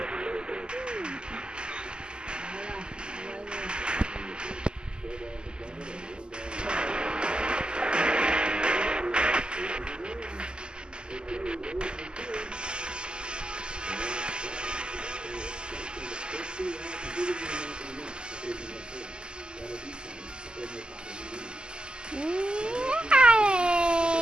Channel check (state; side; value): late; left; 0.048 ms